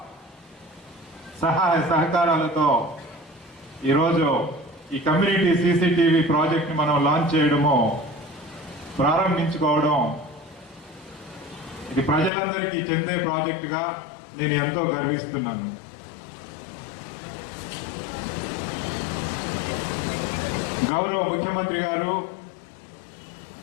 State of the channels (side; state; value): right; drops out; at 12.3 s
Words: సహాయ సహకారాలతో ఈరోజు ఈ కమ్యూనిటీ సీసీటీవీ ప్రాజెక్ట్ని మనం లాంచ్ చేయడము, ప్రారంభించుకోవడం, ఇది ప్రజలందరికీ చెందే ప్రాజెక్టుగా నేను ఎంతో గర్విస్తున్నాను. గౌరవ ముఖ్యమంత్రి గారు